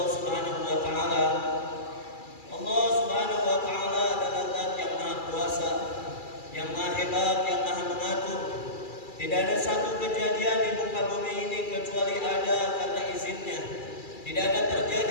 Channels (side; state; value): right; late; 2.3 ms